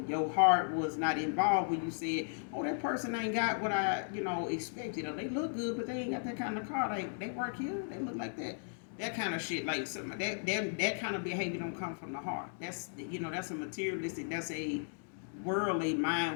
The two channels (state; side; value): silent; right; digital silence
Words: your heart was not involved when you said, oh, that person ain't got what I, expected. Or they look good, but they ain't got that kind of car. They work here, they look like that. That kind of shit, like some that kind of behavior don't come from the heart. That's that's a materialistic, that's a worldly